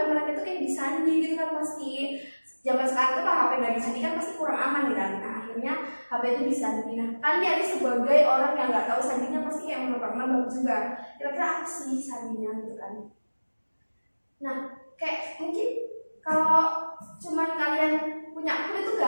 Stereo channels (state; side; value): inverted; both; correlation -1.00